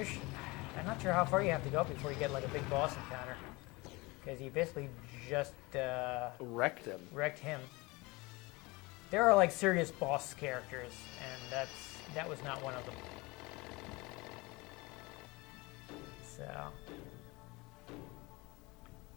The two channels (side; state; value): right; quieter; 24.0 dB